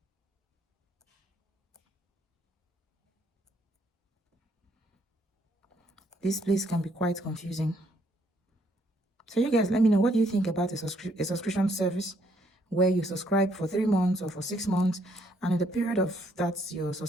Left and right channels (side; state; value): both; normal; correlation 0.69